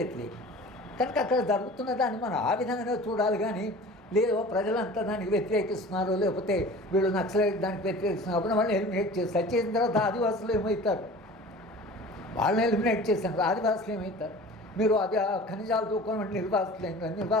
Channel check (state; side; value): normal; both; correlation 0.41